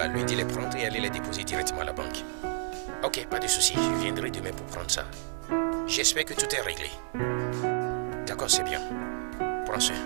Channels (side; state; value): left; silent; 58 dB below the other